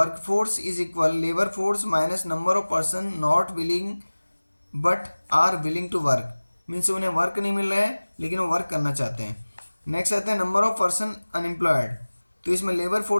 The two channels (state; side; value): inverted; both; correlation -1.00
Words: is equal labour force minus number of person not willing but are willing to work. Means उन्हें वर्क नहीं मिल रहा है लेकिन वो वर्क करना चाहते हैं। नेक्स्ट आता है नंबर ऑफ पर्सन अनएम्प्लॉयड। तो इसमें लेबर